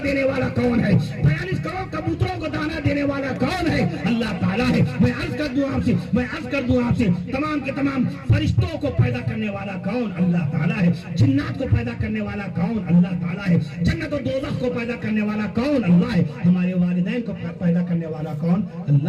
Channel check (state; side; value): identical; both; correlation 1.00